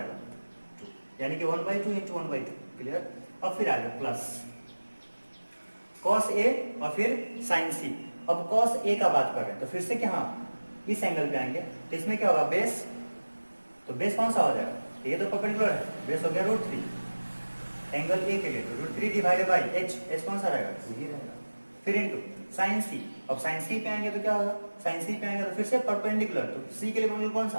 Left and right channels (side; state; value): both; inverted; correlation -1.00